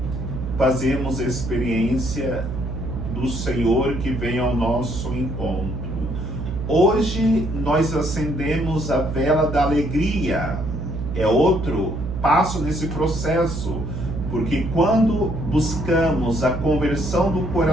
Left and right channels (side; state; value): right; noise; hum, 5 dB below the sound